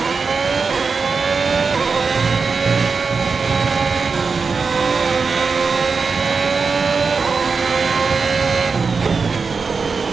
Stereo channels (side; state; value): left; quieter; 4.8 dB